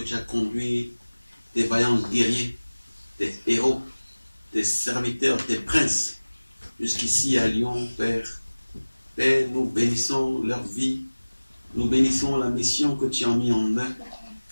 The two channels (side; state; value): both; inverted; correlation -1.00